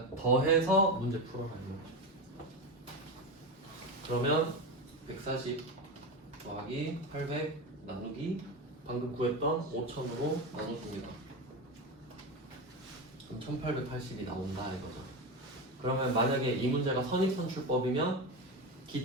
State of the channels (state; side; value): normal; both; correlation 0.19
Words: 더해서 문제 풀어라는 거죠. 그러면 140 더하기 800 나누기 방금 구했던 5000으로 나눠줍니다. 그럼 1880이 나온다 이거죠. 그러면 만약에 이 문제가 선입선출법이면